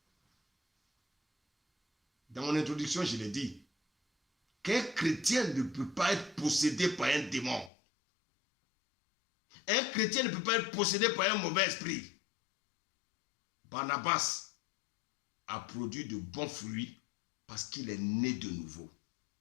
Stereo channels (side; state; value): right; drops out; at 7.7 s